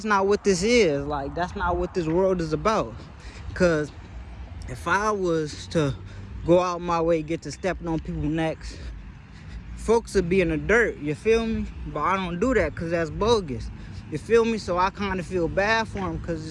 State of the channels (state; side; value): identical; both; correlation 1.00